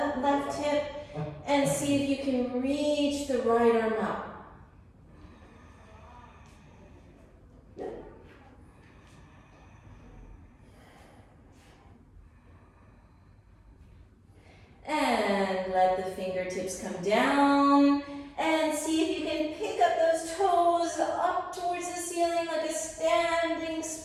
left hip. And see if you can reach the right arm up. And let the fingertips come down. And see if you can pick up those toes up towards the ceiling like a standing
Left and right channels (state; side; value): identical; both; correlation 1.00